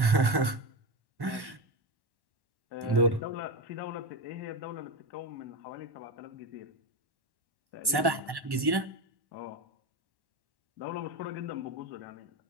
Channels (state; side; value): late; left; 1.1 ms